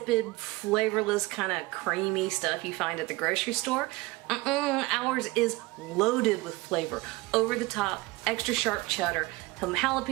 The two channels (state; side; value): quieter; left; 21.7 dB